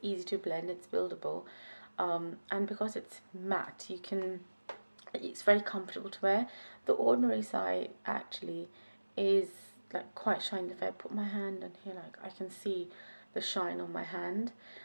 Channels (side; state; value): both; inverted; correlation -1.00